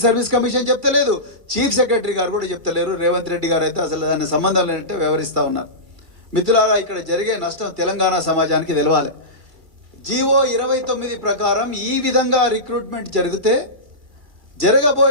సర్వీస్ కమిషన్ చెప్తలేదు, చీఫ్ సెక్రటరీ గారు కూడా చెప్తలేరు. రేవంత్ రెడ్డి గారు అయితే అసలు దాని సంబంధం లేనట్టే వ్యవహరిస్తూ ఉన్నారు. మిత్రులారా, ఇక్కడ జరిగే నష్టం తెలంగాణ సమాజానికి తెలవాలి. జీవో 29 ప్రకారం ఈ విధంగా రిక్రూట్మెంట్ జరిగితే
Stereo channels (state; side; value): late; left; 2.2 ms